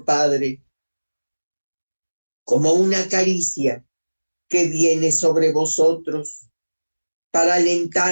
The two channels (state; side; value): inverted; both; correlation -1.00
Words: Padre, como una caricia que viene sobre vosotros para